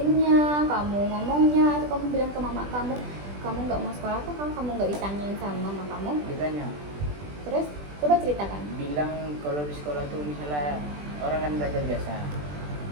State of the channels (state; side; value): late; left; 20 ms